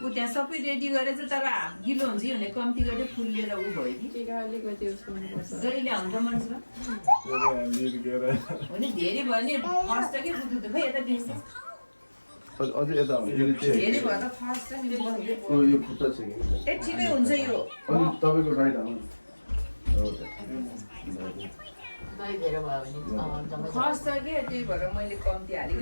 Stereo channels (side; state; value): both; inverted; correlation -1.00